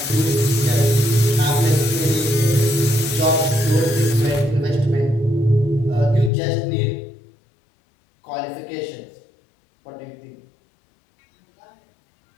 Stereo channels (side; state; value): right; drops out; at 6.3 s